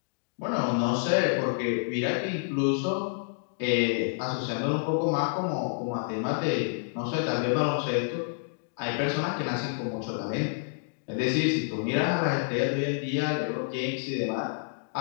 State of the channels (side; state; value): right; silent; digital silence